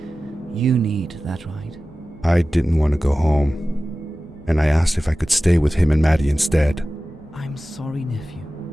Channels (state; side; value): normal; both; correlation 0.96